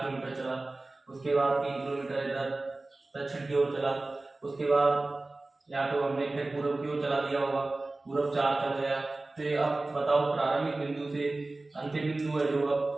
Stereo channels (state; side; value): quieter; left; 3.1 dB